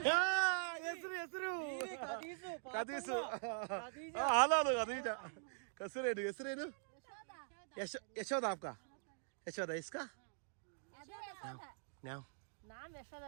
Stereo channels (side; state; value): left; silent; digital silence